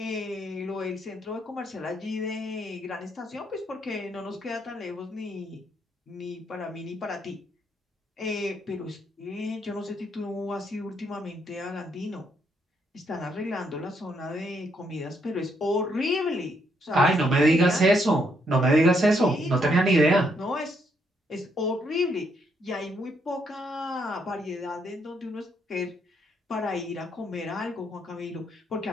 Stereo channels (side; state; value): both; normal; correlation 0.74